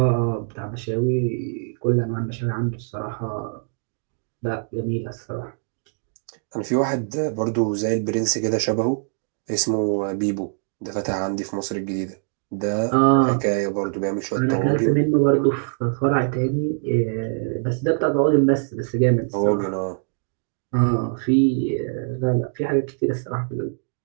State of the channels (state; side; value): silent; left; digital silence